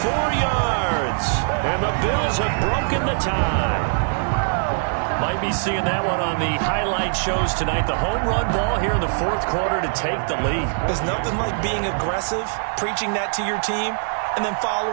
yards. And the Bills have broken the tie. Might be seeing that one on the highlight shows tonight. The home run ball here in the fourth quarter to take the lead. There's nothing like being aggressive, preaching that to your team, and then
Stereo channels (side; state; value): left; silent; digital silence